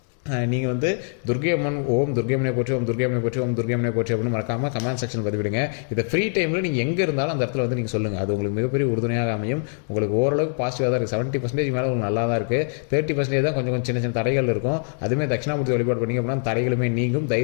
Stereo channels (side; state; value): right; silent; digital silence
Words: நீங்கள் வந்து துர்க்கை அம்மன் ஓம் துர்க்கை அம்மனை போற்றி, ஓம் துர்க்கை அம்மனை போற்றி, ஓம் துர்க்கை அம்மனை போற்றி அப்படின்னு மறக்காமல் கமெண்ட் செக்ஷனில் பதிவிடுங்க. இதை ஃப்ரீ டைமில் நீங்கள் எங்கே இருந்தாலும் அந்த இடத்துல வந்து நீங்கள் சொல்லுங்கள். அது உங்களுக்கு மிகப்பெரிய உறுதுணையாக அமையும். உங்களுக்கு ஓரளவுக்கு பாசிட்டிவாக தான் இருக்குது. 70% மேலே உங்களுக்கு நல்லா தான் இருக்குது. 30% தான் கொஞ்சம் சின்ன சின்ன தடைகள் இருக்கும். அதுவுமே தட்சிணாமூர்த்தி வழிபாடு பண்ணிங்க அப்படின்னா தடைகளுமே நீங்கும்.